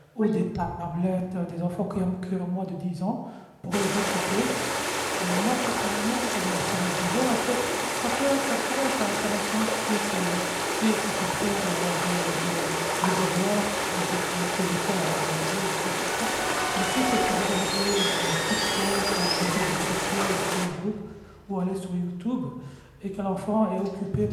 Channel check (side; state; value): both; identical; correlation 1.00